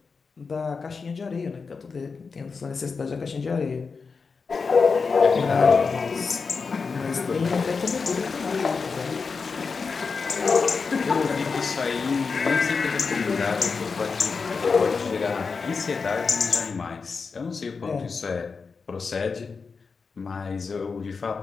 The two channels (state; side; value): quieter; right; 4.9 dB